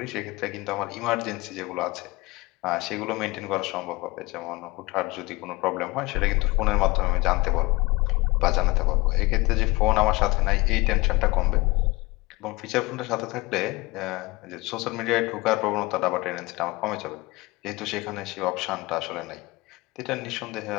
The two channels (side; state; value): right; quieter; 23.1 dB